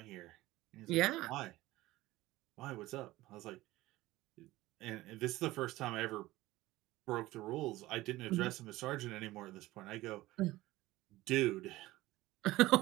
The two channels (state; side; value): quieter; left; 17.7 dB